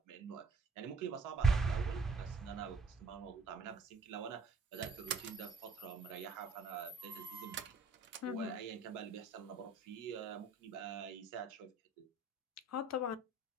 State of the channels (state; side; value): quieter; left; 3.3 dB